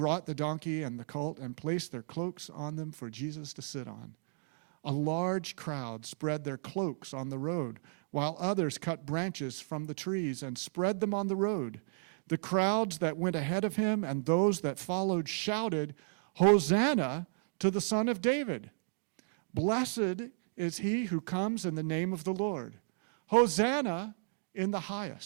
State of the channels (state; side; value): silent; left; digital silence